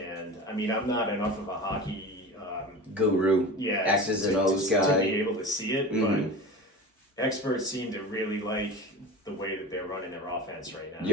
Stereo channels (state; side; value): normal; both; correlation 0.32